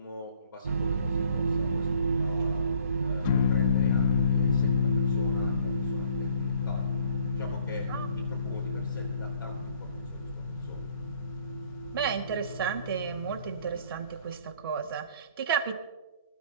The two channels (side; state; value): both; inverted; correlation -0.60